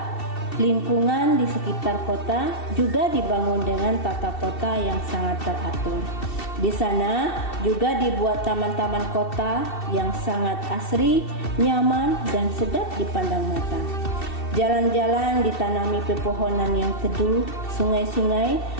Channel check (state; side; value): late; right; 2.7 ms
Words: Lingkungan di sekitar kota juga dibangun dengan tata kota yang sangat teratur. Di sana juga dibuat taman-taman kota yang sangat asri, nyaman, dan sedap dipandang mata. Jalan-jalan ditanami pepohonan yang teduh, sungai-sungai